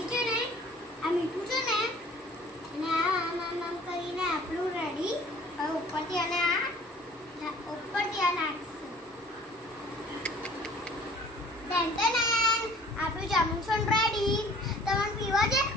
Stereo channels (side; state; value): both; normal; correlation 0.51